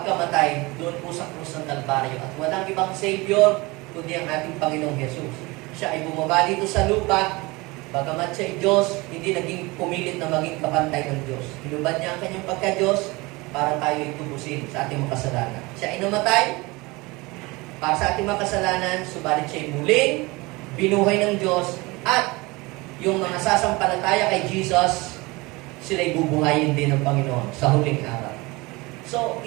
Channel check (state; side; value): quieter; left; 23.6 dB